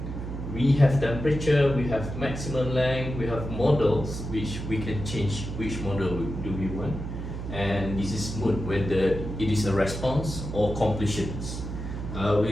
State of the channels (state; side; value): noise; right; hum, 6 dB below the sound